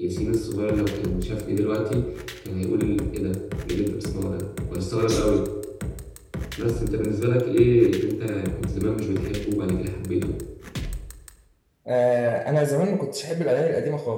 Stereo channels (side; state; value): both; identical; correlation 1.00